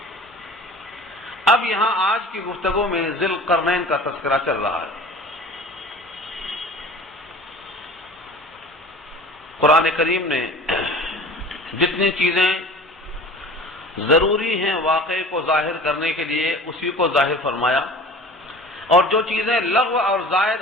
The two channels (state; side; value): normal; both; correlation 0.41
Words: اب یہاں آج کی گفتگو میں ذی القرنین کا تذکرہ چل رہا ہے۔ قرآن کریم نے جتنی چیزیں ضروری ہیں واقعے کو ظاہر کرنے کے لیے اسی کو ظاہر فرمایا، اور جو چیزیں لغو اور زائد